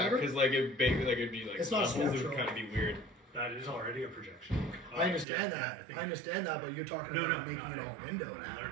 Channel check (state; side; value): drops out; left; at 5.2 s